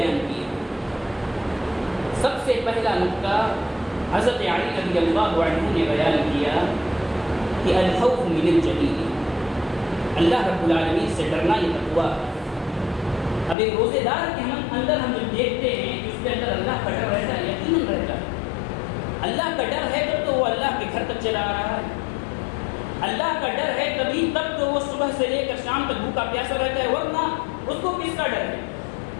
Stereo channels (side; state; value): right; drops out; at 13.6 s